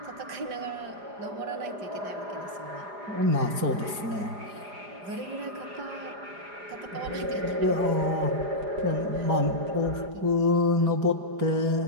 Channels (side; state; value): left; late; 5.0 ms